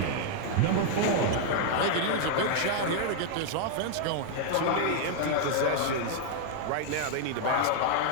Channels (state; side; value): different; both; correlation 0.00